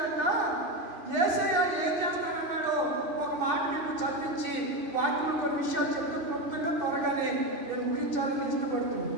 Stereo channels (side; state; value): left; late; 2.6 ms